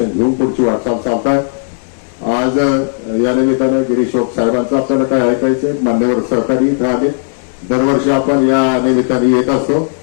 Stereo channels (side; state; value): right; silent; digital silence